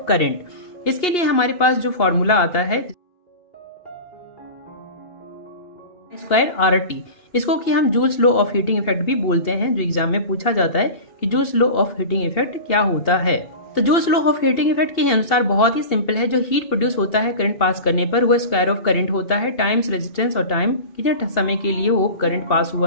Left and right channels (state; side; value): late; right; 2.8 ms